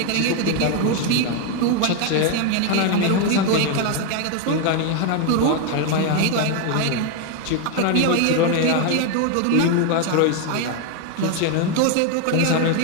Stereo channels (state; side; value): different; both; correlation 0.01